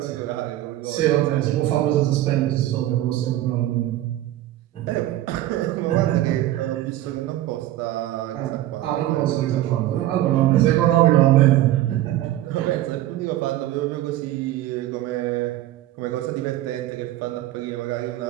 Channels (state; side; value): quieter; left; 14.4 dB